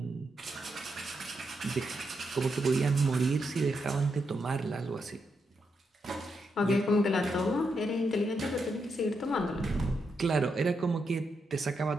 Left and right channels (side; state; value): both; normal; correlation 0.82